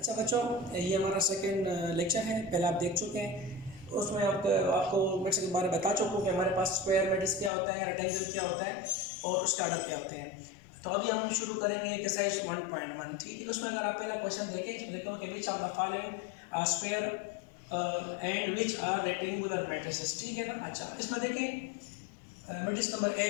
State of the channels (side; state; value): right; drops out; at 7.5 s